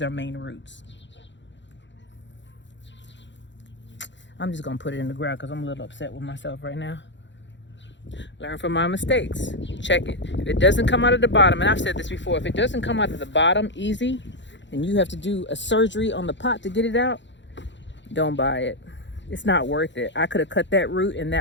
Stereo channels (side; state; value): right; late; 0.53 ms